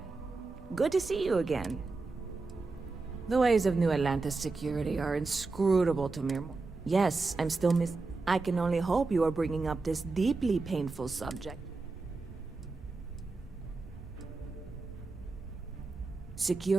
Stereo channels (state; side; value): quieter; left; 3.8 dB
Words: Good to see you again. The ways of New Atlantis security are inscrutable to mere... Yes, I'm still I can only hope you are bringing up this deeply painful subject.